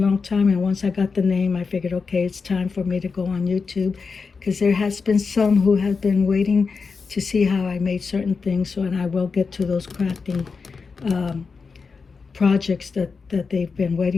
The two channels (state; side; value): quieter; right; 4.9 dB